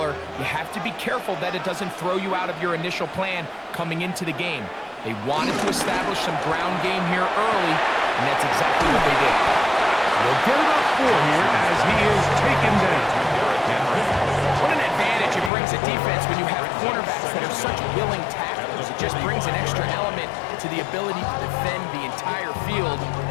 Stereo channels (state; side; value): drops out; right; at 15.5 s